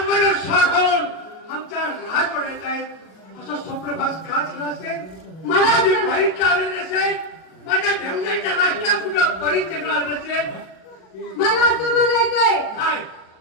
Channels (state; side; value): late; right; 37 ms